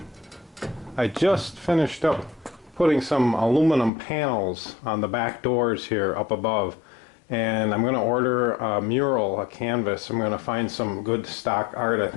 I just finished up putting some aluminum panels on the back doors here up above. And I'm going to order a mural, a canvas. I'm going to find some good stock art. I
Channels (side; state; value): right; drops out; at 3.9 s